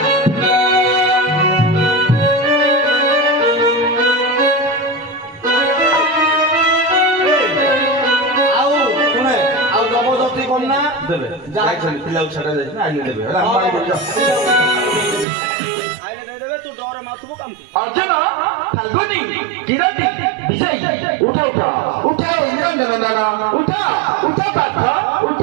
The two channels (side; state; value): left; drops out; at 15.2 s